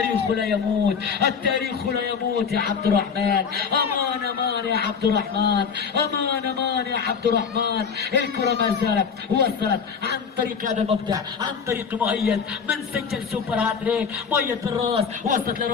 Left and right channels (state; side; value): quieter; right; 6.2 dB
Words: لا يموت، التاريخ لا يموت يا عبد الرحمن. امان امان يا عبد الرحمن، امان امان يا عبد الرحمن. الكرة ما زالت وصلت عن طريق هذا المبدع، عن طريق مؤيد من سجل سوبر هاتريك. مؤيد بالراس، وصلت